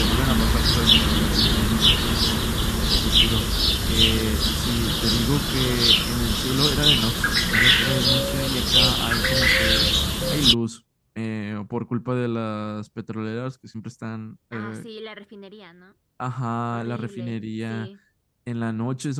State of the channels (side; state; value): both; identical; correlation 1.00